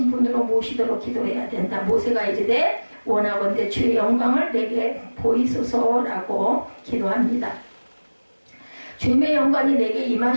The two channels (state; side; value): inverted; both; correlation -1.00